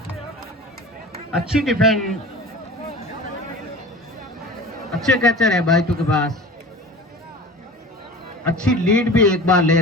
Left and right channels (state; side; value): normal; both; correlation 0.37